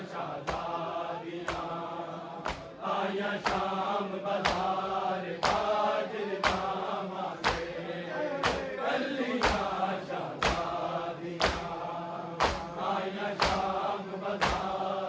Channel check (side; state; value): both; identical; correlation 1.00